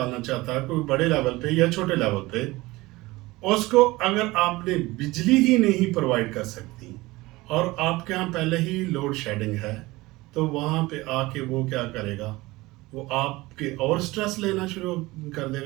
चाहता है, कोई बड़े लेवल पे या छोटे लेवल पे, उसको अगर आपने बिजली ही नहीं प्रोवाइड कर सकती और आपके यहाँ पहले ही लोड शेडिंग है, तो वहाँ पे आके वो क्या करेगा, वो आपके और स्ट्रेस लेना शुरू कर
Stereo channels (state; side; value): quieter; left; 20.5 dB